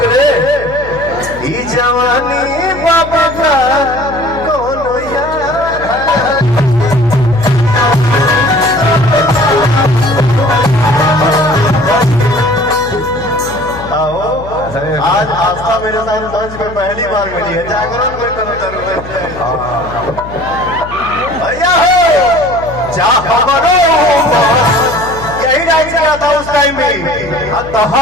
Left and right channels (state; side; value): noise; left; hum, 14 dB below the sound